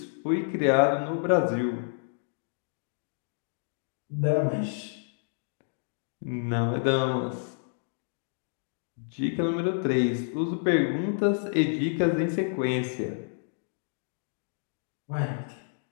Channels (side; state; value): right; silent; digital silence